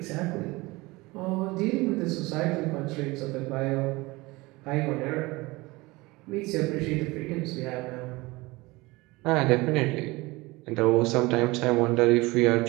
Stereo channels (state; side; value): quieter; left; 22.2 dB